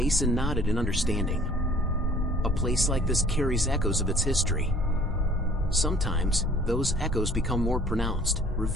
nodded in understanding. "A place like this carries echoes of its history. Sometimes, those echoes become more pronounced,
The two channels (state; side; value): normal; both; correlation 0.54